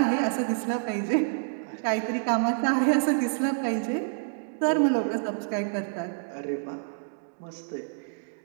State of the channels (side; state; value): left; silent; digital silence